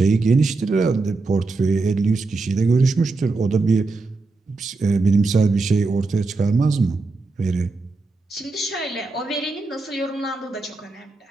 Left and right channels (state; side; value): quieter; left; 3.7 dB